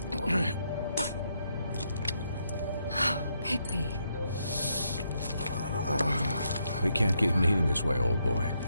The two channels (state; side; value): inverted; both; correlation -0.78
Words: Bigby. We can't keep meeting this way, old boy.